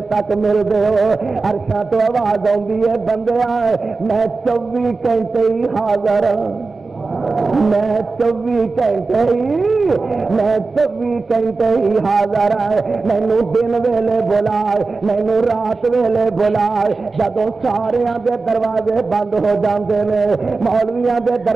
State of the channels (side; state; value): left; quieter; 3.9 dB